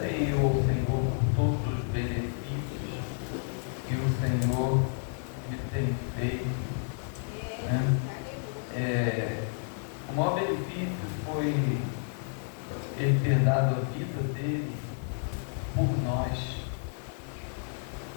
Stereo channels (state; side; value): silent; right; 57 dB below the other